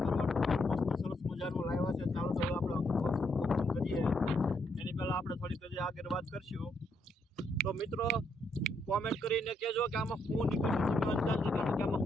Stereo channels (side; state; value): both; normal; correlation 0.76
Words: એની પહેલા આપણે થોડીક હજી આગળ વાત કરશું. તો મિત્રો, કોમેન્ટ કરીને કહેજો કે આમાં શું નીકળશે. તમે અંદાજ લગાવો કે આમાં